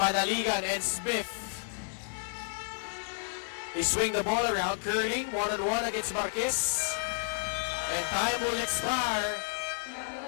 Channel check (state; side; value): silent; right; digital silence